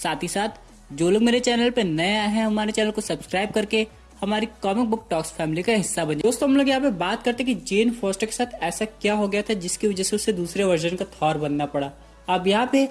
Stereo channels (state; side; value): identical; both; correlation 1.00